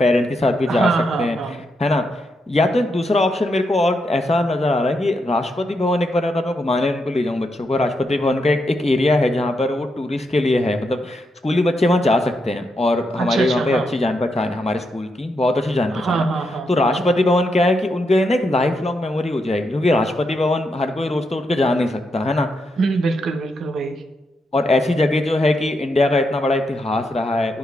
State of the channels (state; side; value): normal; both; correlation 0.82